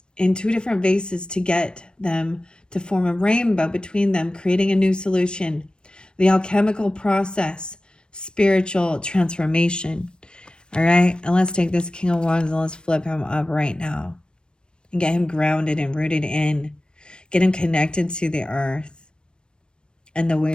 in two different vases to get them to form a rainbow between them, creating a new solution. The alchemical process, spiritual transformation. All right, and let's take this King of Wands and let's flip him up right now and get him grounded and rooted in. Get him connected to the earth and the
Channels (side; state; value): right; late; 0.053 ms